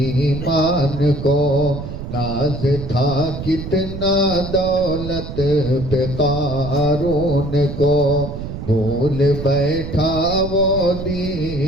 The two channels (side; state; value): right; noise; rumble, 8 dB below the sound